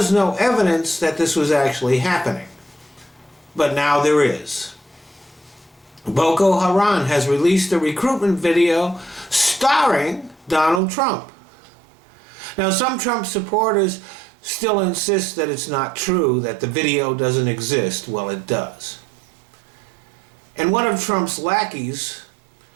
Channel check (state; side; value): drops out; left; at 10.8 s